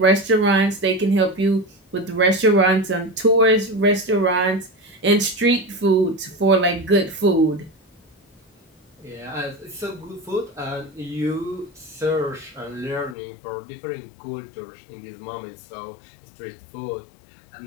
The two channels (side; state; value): right; drops out; at 13.2 s